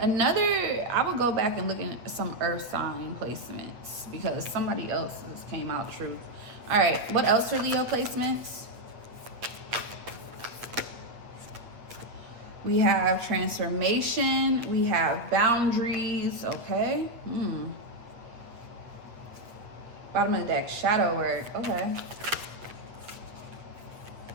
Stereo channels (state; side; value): late; left; 8.5 ms